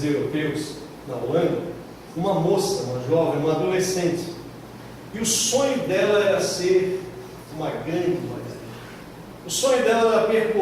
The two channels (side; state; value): both; identical; correlation 1.00